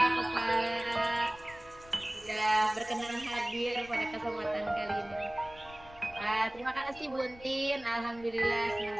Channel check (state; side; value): noise; left; rumble, 21 dB below the sound